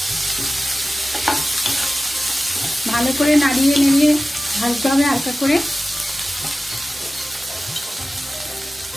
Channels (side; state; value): both; normal; correlation 0.96